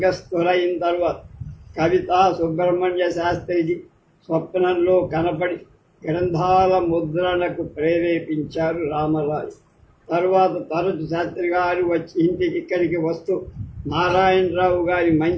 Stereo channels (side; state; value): both; identical; correlation 1.00